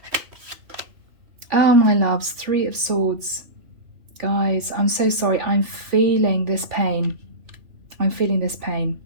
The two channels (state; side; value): late; left; 3.1 ms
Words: Oh, my loves, Three of Swords. Guys, I'm so sorry. I'm feeling this pain. I'm feeling this pain.